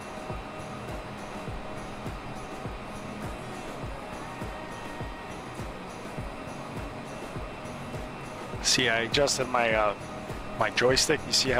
See, I adjusted my my joystick. You see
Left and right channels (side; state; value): both; identical; correlation 1.00